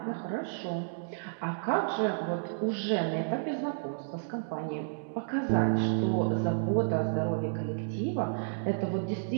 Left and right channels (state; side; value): silent; left; digital silence